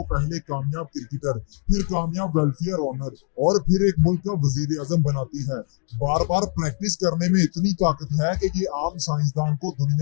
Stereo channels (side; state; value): right; quieter; 37.4 dB